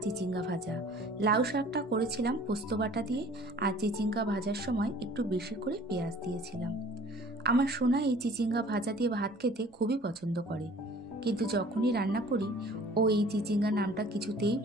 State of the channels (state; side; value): normal; both; correlation 0.50